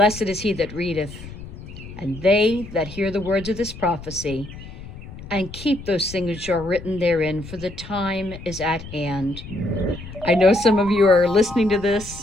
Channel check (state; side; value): noise; left; rumble, 14 dB below the sound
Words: is he that readeth, and they that hear the words of this prophecy, and keep those things which are written therein, for the time is at hand. I know some of you are listening to